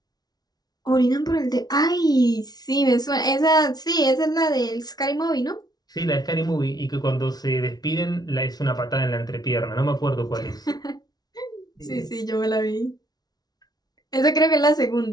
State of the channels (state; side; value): late; right; 0.19 ms